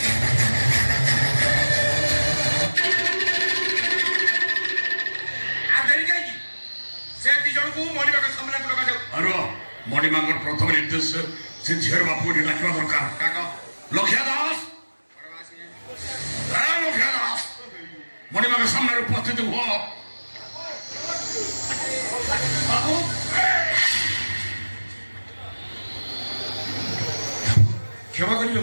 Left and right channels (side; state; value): both; inverted; correlation -1.00